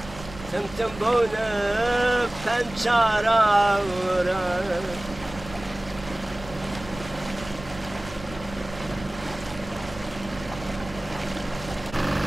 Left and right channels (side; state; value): right; noise; rumble, 15 dB below the sound